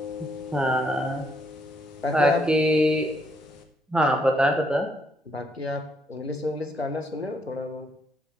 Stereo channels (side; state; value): both; normal; correlation 0.73